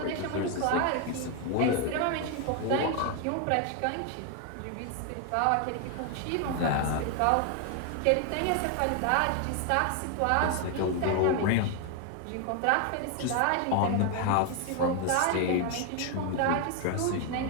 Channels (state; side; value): different; both; correlation 0.01